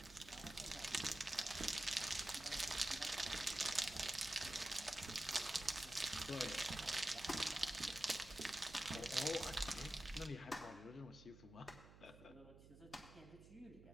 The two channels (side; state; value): right; noise; hum, 19 dB below the sound